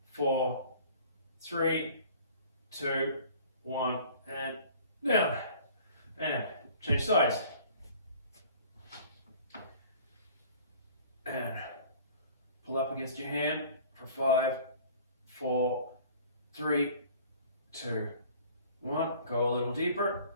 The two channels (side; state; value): both; inverted; correlation -0.49